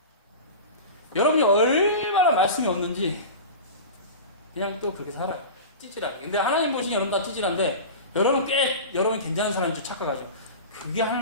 여러분이 얼마나 말씀이 없는지 그냥 또 그렇게 살아요. 찌질하게. 근데 하나님 보시니 여러분 다 찌질한데 여러분 괜찮은 사람인 줄 착각하죠. 그게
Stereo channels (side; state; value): both; inverted; correlation -0.30